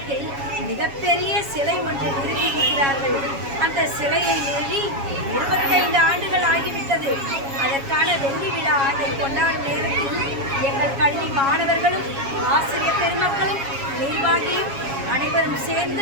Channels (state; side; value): late; left; 7.3 ms